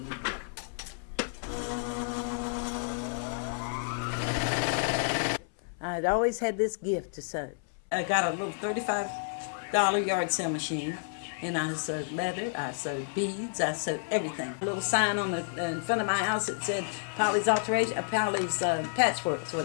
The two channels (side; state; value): right; silent; 57 dB below the other